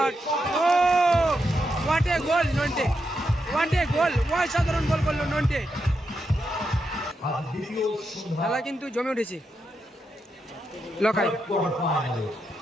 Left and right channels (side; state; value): both; normal; correlation 0.84